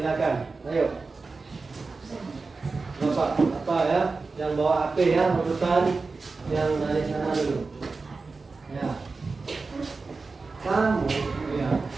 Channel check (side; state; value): left; quieter; 4.1 dB